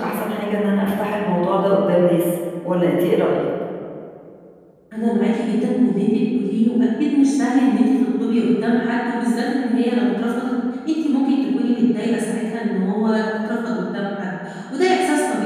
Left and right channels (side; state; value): both; identical; correlation 1.00